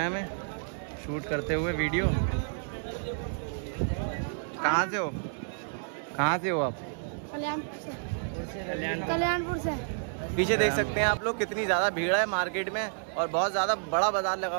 हमें शूट करते हुए वीडियो। कहाँ से हो आप? कल्याणपुर से। पीछे देख सकते हैं आप लोग कितनी ज़्यादा भीड़ है मार्केट में, और बहुत ज़्यादा बड़ा बाज़ार लगा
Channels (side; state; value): left; silent; digital silence